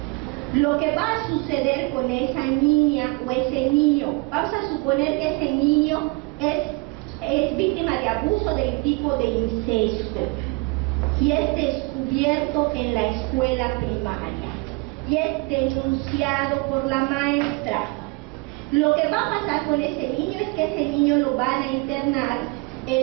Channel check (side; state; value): left; quieter; 26.6 dB